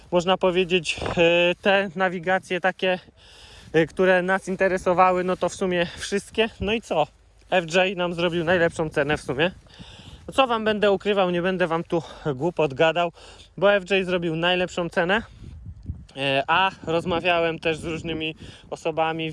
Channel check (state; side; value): identical; both; correlation 1.00